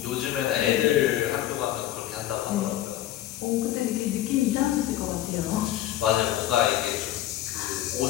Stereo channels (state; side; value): quieter; right; 13.4 dB